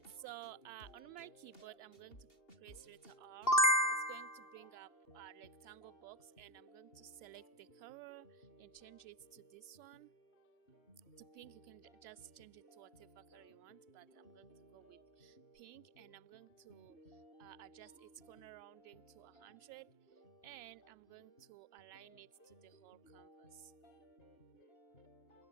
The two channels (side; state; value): right; late; 2.9 ms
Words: So on my keyboard, I'm going to press letter R. It's going to bring up a rectangle box, and I'm going to select the color and change it to this one, to pink. You can just change it to whatever color you want, but I'm going to go with pink, and I'm going to adjust its corner rounding to 100, and I'm going to align it to the whole canvas.